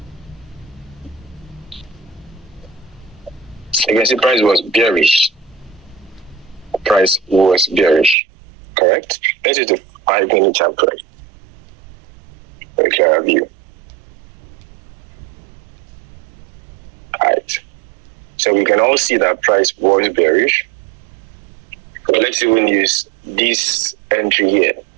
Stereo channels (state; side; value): drops out; left; at 8.2 s